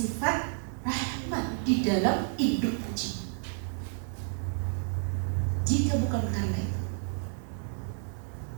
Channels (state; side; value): silent; left; 57 dB below the other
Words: rahmat di dalam induk kucing. Jika bukan karena itu,